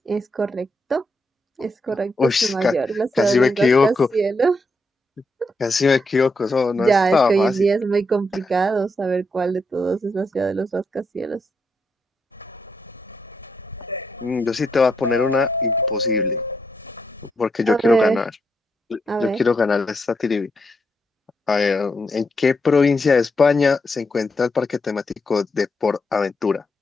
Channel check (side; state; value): both; normal; correlation 0.81